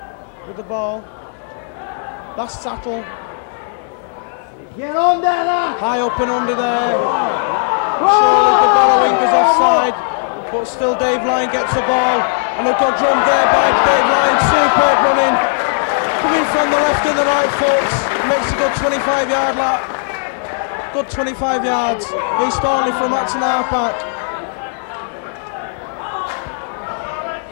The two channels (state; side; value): silent; right; 68 dB below the other